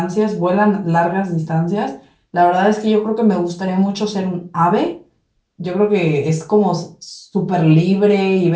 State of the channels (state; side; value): identical; both; correlation 1.00